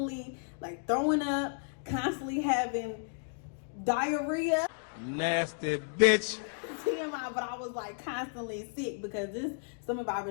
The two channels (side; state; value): right; silent; 56 dB below the other